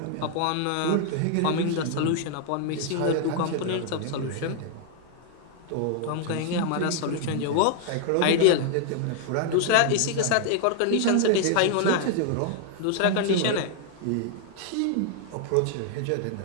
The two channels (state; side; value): different; both; correlation 0.00